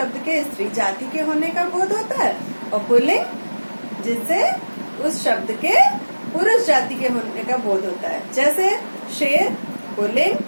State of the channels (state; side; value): inverted; both; correlation -1.00